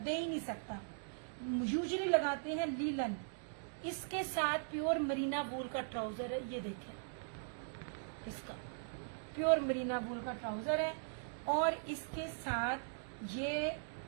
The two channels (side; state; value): left; silent; digital silence